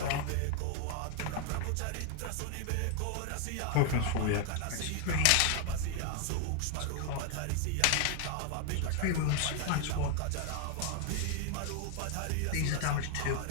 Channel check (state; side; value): different; both; correlation 0.00